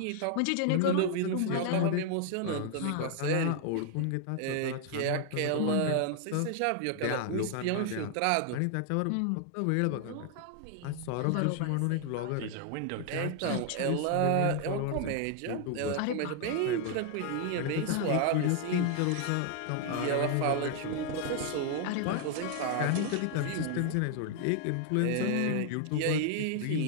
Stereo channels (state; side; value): different; both; correlation 0.00